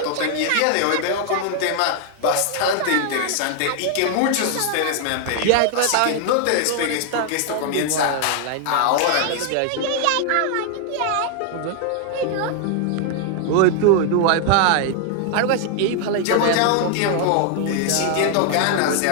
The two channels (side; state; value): both; different; correlation 0.00